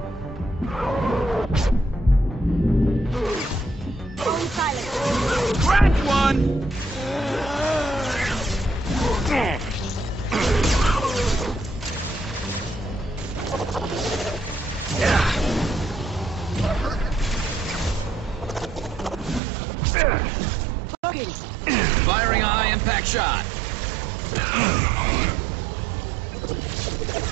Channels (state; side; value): drops out; left; at 19.4 s